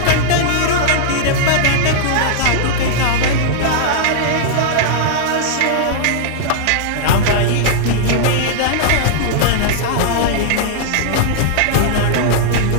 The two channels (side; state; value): both; different; correlation -0.01